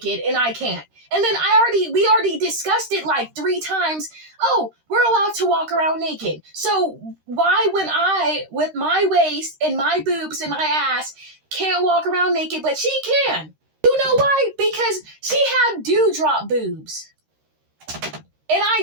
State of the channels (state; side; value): late; left; 13 ms